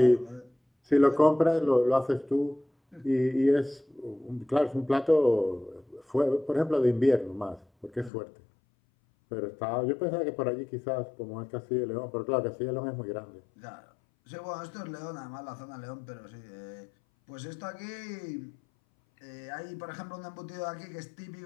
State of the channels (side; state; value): right; drops out; at 8.1 s